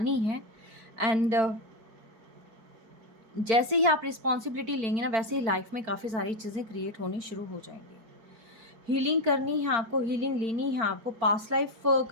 हैं, एंड जैसे ही आप रिस्पॉन्सिबिलिटी लेंगे ना, वैसे ही लाइफ में काफ़ी सारी चीज़ें क्रिएट होनी शुरू हो जाएंगी। हीलिंग करनी है आपको, हीलिंग लेनी है आपको, पास्ट लाइफ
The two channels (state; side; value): late; left; 4.5 ms